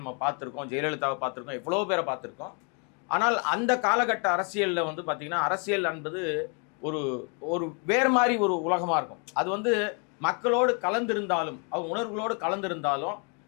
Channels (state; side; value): quieter; right; 37.2 dB